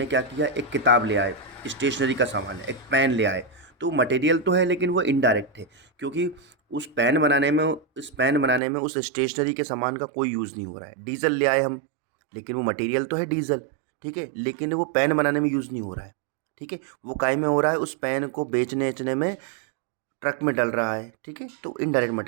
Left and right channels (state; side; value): drops out; left; at 8.6 s